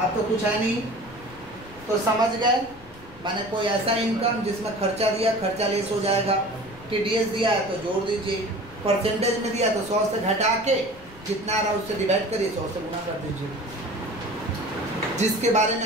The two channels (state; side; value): noise; left; rumble, 20 dB below the sound